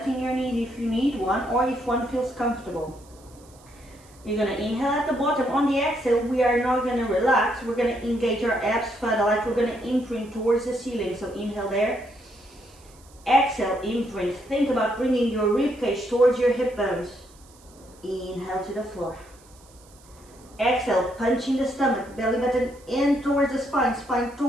in your knees if you need one or if one feels comfortable. You're going to inhale at the bottom. On the exhale, we are not going to relax. We're going to engage our abs further, like we're going to imprint towards the ceiling. So inhale there. Exhale, imprint. Think about bringing your rib cage towards your hip bones. Inhale to the floor. Exhale, punching the stomach, belly button in towards the spine, spine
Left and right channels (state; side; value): noise; right; hiss, 27 dB below the sound